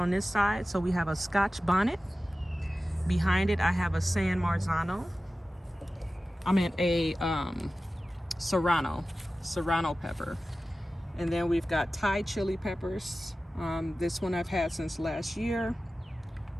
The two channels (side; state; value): both; normal; correlation 0.95